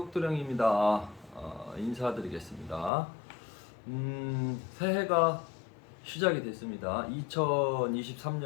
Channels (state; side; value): drops out; right; at 2.9 s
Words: 인사드리겠습니다. 새해가 시작이 됐습니다.